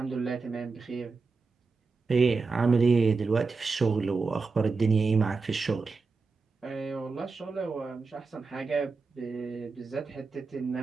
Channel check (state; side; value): quieter; left; 4.3 dB